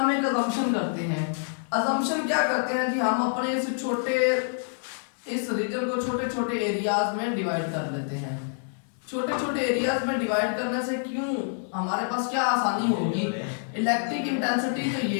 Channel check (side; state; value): right; silent; 60 dB below the other